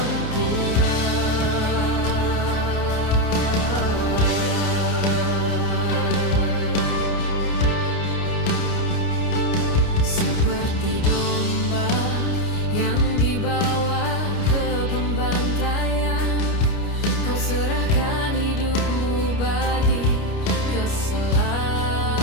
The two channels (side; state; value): right; late; 29 ms